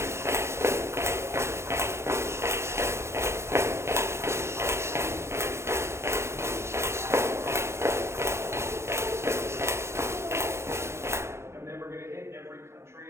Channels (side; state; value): left; late; 0.13 ms